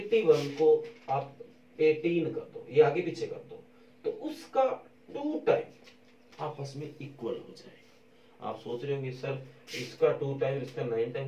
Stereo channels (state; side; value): identical; both; correlation 1.00